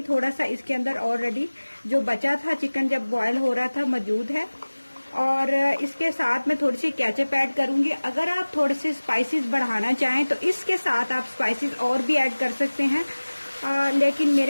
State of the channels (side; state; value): both; inverted; correlation -1.00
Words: थोड़ा सा इसके अंदर ऑलरेडी जो बचा था चिकन जब बॉयल हो रहा था मौजूद है। और इसके साथ मैं थोड़ी सी केचप ऐड करूंगी। अगर आप थोड़े से स्पाइसेस बढ़ाना चाहें तो इसके साथ आप स्पाइसेस और भी ऐड कर सकते हैं, लेकिन